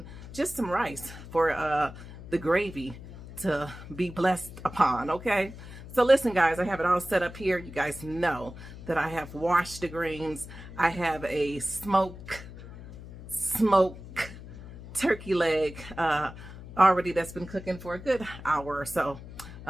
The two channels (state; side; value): noise; left; hum, 14 dB below the sound